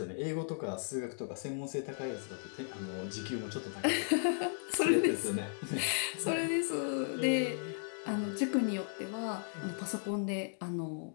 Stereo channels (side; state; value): right; silent; digital silence